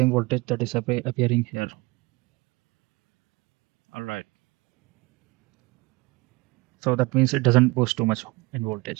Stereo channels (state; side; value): quieter; left; 23.9 dB